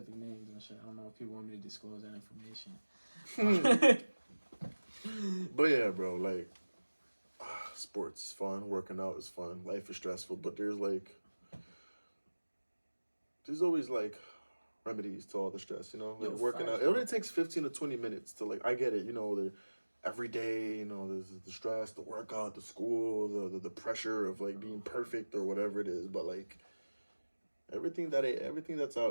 names and shit. I don't know if people want me to disclose that information. But yeah, bro, like sports is fun, working out is fun, life is stressful, but there's always like remedies to all the stress, you know? Like Yo, working facts, out. It bro. only takes 15 to 20 minutes to like I get it, you know, every day, you know, there's the stress, the workout, the school, the pressure of like being perfect or whatever it is. But like everything that's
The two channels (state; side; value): inverted; both; correlation -1.00